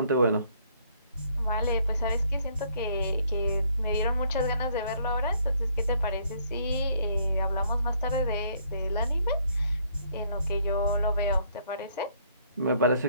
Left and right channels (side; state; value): both; inverted; correlation -0.66